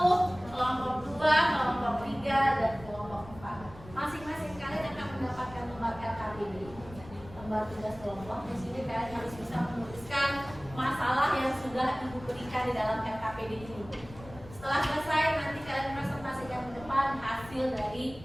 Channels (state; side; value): noise; left; rumble, 17 dB below the sound